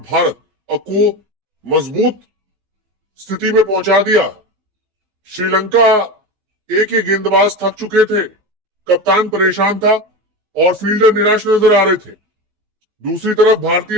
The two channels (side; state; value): left; late; 15 ms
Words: भारत को मजबूत स्थिति में पहुंचा दिया। श्रीलंका ए के गेंदबाज थक चुके थे, कप्तान परेशान था और फील्डर निराश नजर आ रहे थे। दूसरी तरफ